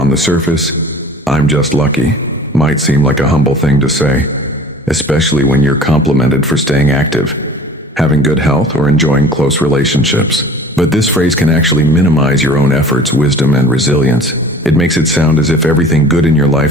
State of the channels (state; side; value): normal; both; correlation 0.45